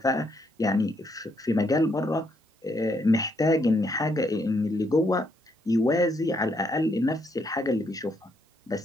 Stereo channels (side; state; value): both; normal; correlation 0.74